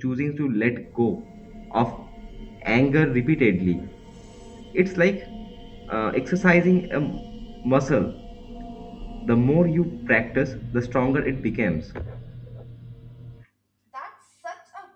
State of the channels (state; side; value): identical; both; correlation 1.00